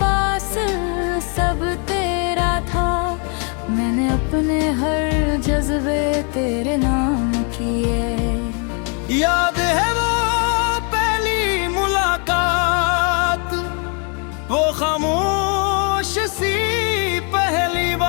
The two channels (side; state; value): right; quieter; 38.0 dB